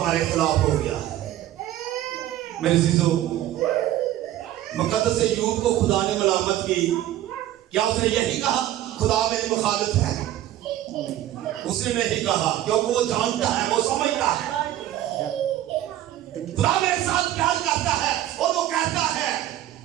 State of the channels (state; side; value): quieter; left; 13.2 dB